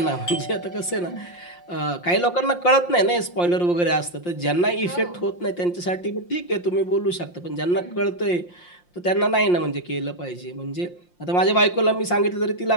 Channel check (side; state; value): right; late; 5.7 ms